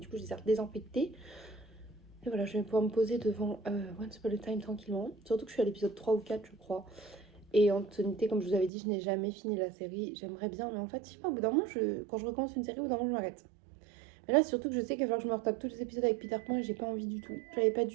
du coup, je les ai désinfectées. Et voilà, je vais pouvoir me poser devant Once Upon a Time tranquillement. Surtout que je suis à l'épisode 3 ou 4, je crois. Et en toute honnêteté, comme je vous avais dit, je n'ai jamais fini la série. J'aimerais bien, mais en fait, je sais pas, au bout d'un moment, quand je recommence une série, au bout d'un moment, je m'arrête. Mais là, c'est surtout que je sais qu'il va falloir que je me retape tous les épisodes avec Peter Pan et j'ai pas envie du tout. J'avais pas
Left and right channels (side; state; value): left; drops out; at 8.7 s